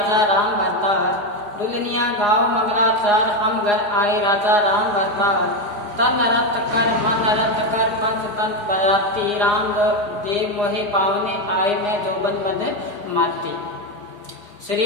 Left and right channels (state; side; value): late; left; 4.8 ms